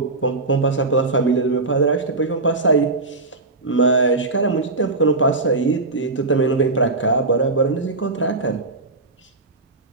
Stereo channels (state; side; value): quieter; left; 3.3 dB